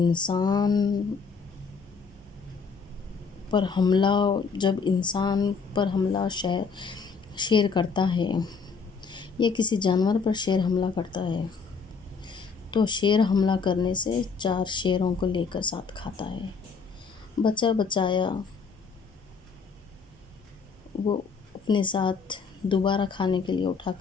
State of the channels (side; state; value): right; quieter; 5.3 dB